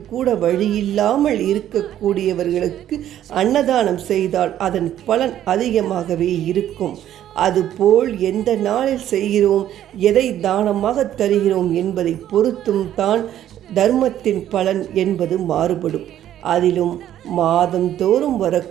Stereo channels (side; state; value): left; quieter; 11.5 dB